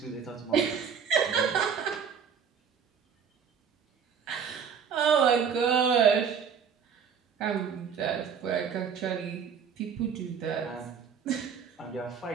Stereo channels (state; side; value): quieter; left; 7.0 dB